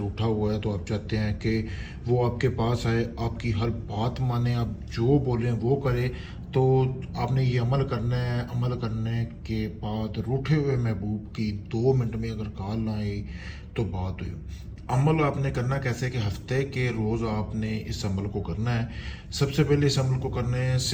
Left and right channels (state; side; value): identical; both; correlation 1.00